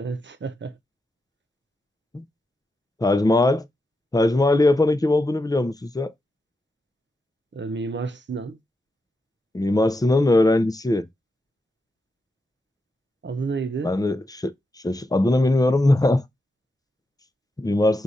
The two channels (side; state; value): both; normal; correlation 0.86